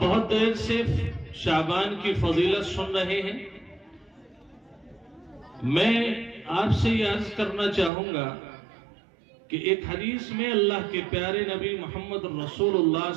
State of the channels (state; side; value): drops out; left; at 7.9 s